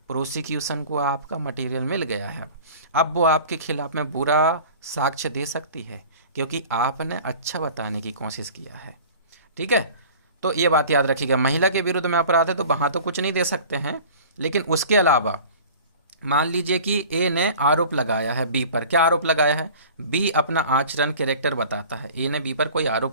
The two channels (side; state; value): both; inverted; correlation -0.43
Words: प्रोसिक्यूशन को आपका मटेरियल मिल गया है, अब वो आपके खिलाफ में बुरा साक्ष्य दे सकती है क्योंकि आपने अच्छा बताने की कोशिश किया है। ठीक है, तो ये बात याद रखिएगा। महिला के विरुद्ध में अपराध है तो वहाँ तो कुछ नहीं दे सकते हैं, लेकिन उसके अलावा मान लीजिए कि ए ने आरोप लगाया है बी पर। क्या आरोप लगाया है? बी अपना आचरण कैरेक्टर बताता है। ए ने बी पर कोई